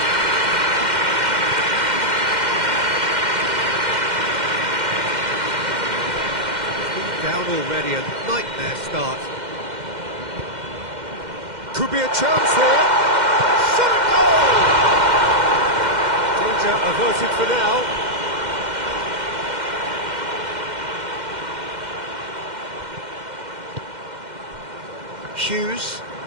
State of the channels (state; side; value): late; left; 2.1 ms